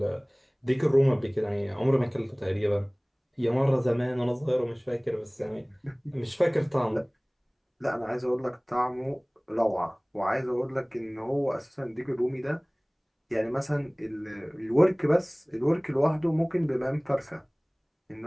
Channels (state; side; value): identical; both; correlation 1.00